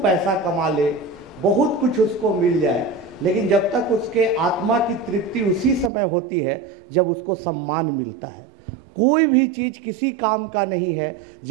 पैसा कमा ले, बहुत कुछ उसको मिल जाए, लेकिन जब तक उसके आत्मा की तृप्ति उसी समय होती है जब उसको सम्मान मिलता है। कोई भी चीज़ किसी काम का नहीं है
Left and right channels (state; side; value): drops out; left; at 5.9 s